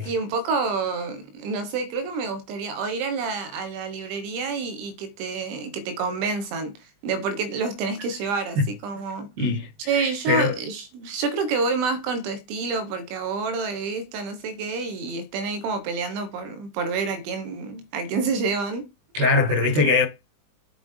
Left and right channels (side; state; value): left; late; 20 ms